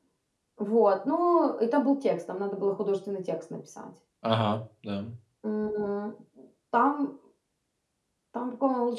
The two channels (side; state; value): both; identical; correlation 1.00